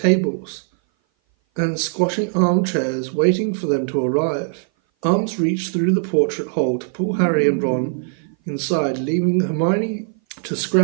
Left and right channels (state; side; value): silent; left; 58 dB below the other